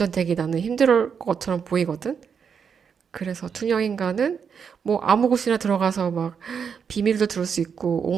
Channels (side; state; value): left; quieter; 6.7 dB